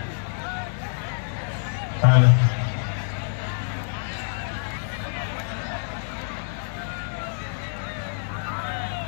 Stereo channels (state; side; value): silent; right; digital silence